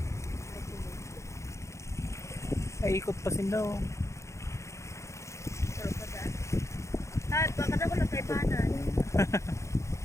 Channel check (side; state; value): right; late; 0.14 ms